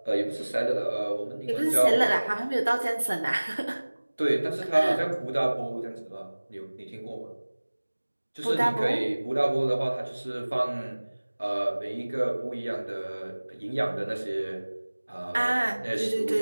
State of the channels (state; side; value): inverted; both; correlation -1.00